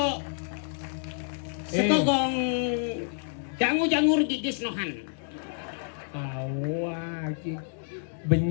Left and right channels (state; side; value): silent; right; digital silence